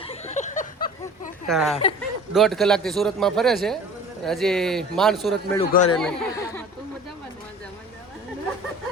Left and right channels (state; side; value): normal; both; correlation 0.43